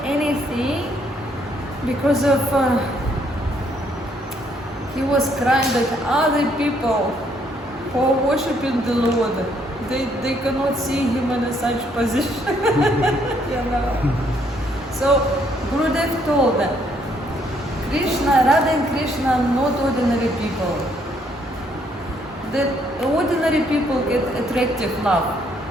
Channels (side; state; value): both; normal; correlation 0.69